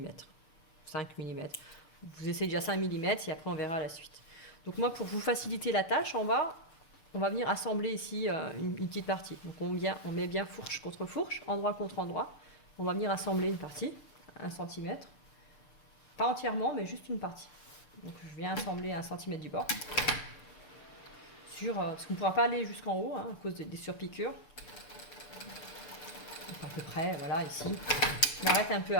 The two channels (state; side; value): late; right; 6.8 ms